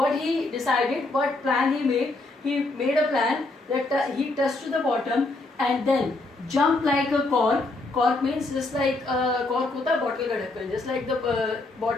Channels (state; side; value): quieter; right; 3.0 dB